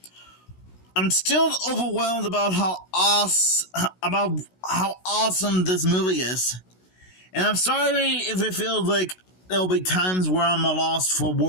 I'm still overwhelmed about how awesome this movie is. And I'm sorry if it feels like there'll be times where I'm lost for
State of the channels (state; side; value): late; right; 16 ms